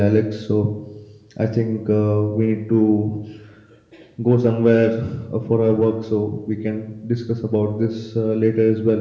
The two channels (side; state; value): both; identical; correlation 1.00